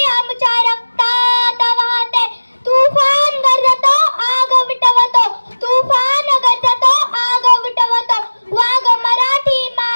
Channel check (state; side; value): inverted; both; correlation -1.00